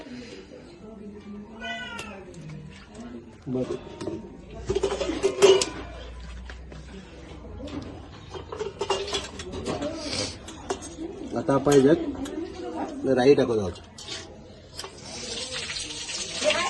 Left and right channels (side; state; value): both; identical; correlation 1.00